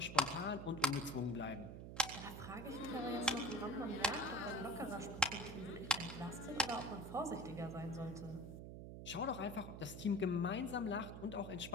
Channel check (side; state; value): right; noise; hum, 9 dB below the sound